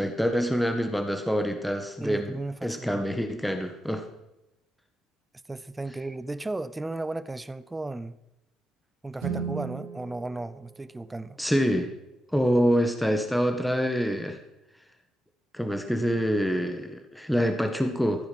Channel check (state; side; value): normal; both; correlation 0.90